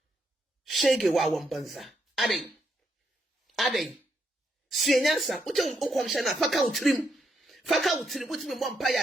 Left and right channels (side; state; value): both; normal; correlation 0.78